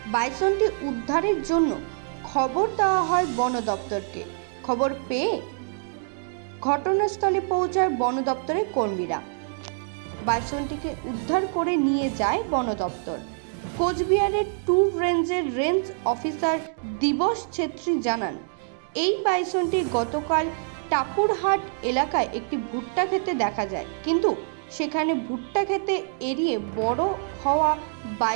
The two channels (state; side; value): silent; left; digital silence